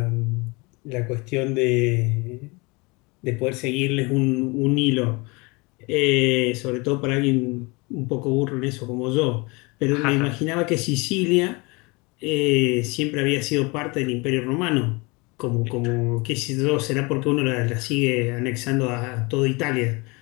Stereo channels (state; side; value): quieter; right; 27.0 dB